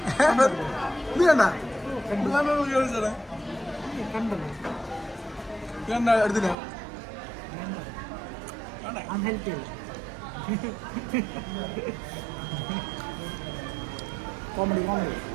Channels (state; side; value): drops out; left; at 6.6 s